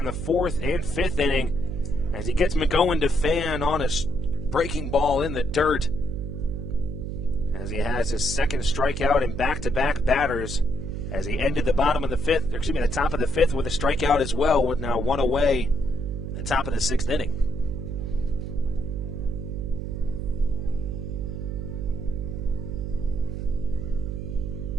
the 4th and 5th inning as he gets McOwen to fan on a breaking ball in the dirt. As he has his 2nd strikeout in back-to-back batters, as he ended the the top of the 5th with a strikeout as well, with now 1 away in the top of the 6th inning.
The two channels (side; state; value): right; noise; hum, 5 dB below the sound